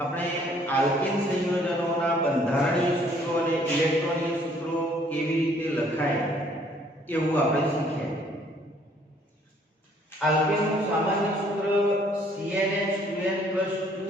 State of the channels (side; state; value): both; normal; correlation 0.62